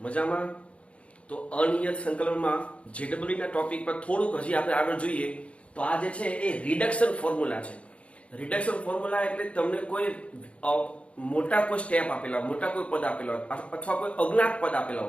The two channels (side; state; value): right; late; 0.061 ms